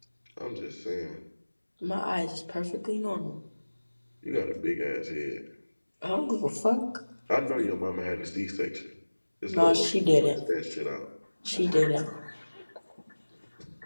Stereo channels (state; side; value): inverted; both; correlation -1.00